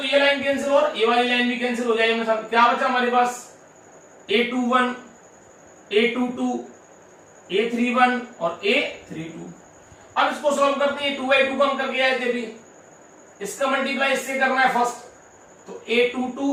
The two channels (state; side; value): identical; both; correlation 1.00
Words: ये लाइन कैंसिल और ये वाली लाइन भी कैंसिल हो जाएगी। क्या बचा हमारे पास, A21, A22, A31 और A32। अब इसको सॉल्व करते हैं। 2/2 कम करके आए थे भी, इसका मल्टीप्लाई इससे करना है फर्स्ट, तो